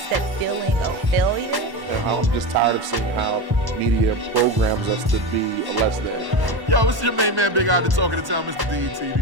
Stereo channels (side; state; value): left; late; 1.1 ms